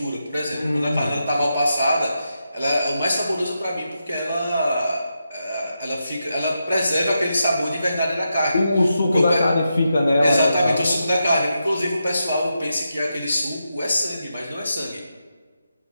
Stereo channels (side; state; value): both; inverted; correlation -0.86